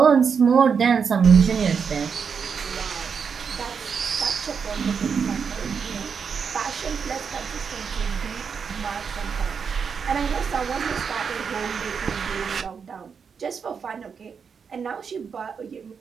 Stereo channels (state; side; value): quieter; left; 6.2 dB